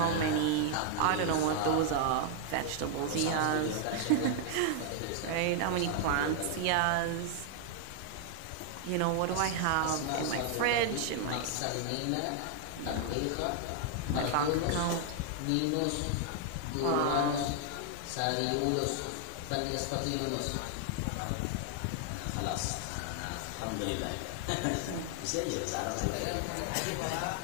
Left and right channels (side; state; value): both; different; correlation 0.00